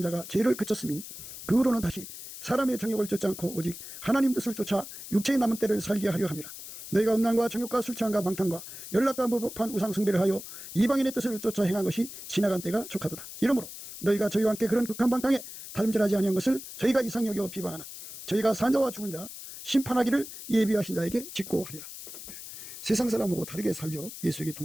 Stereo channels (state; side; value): noise; left; hiss, 12 dB below the sound